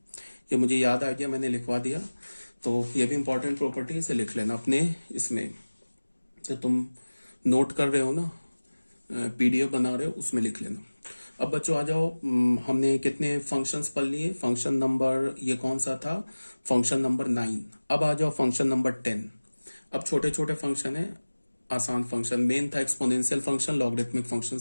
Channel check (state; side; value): inverted; both; correlation -1.00